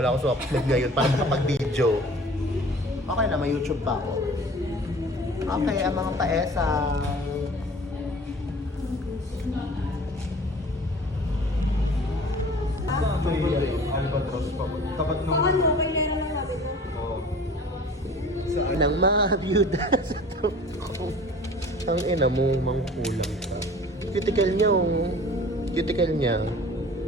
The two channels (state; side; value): normal; both; correlation 0.45